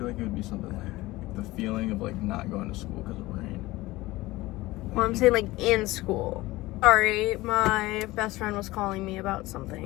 like it would be something like the feeling of like not going to school because of rain. Well, I'm saying like in school. Sorry, my best friend was calling me about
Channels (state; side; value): quieter; right; 19.2 dB